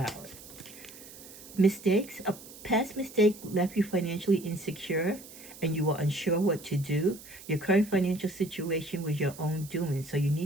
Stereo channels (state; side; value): noise; right; hiss, 17 dB below the sound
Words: Mistakes. A past mistake left you financially insecure and you were unsure what to do. Your current financial situation was your own doing, so you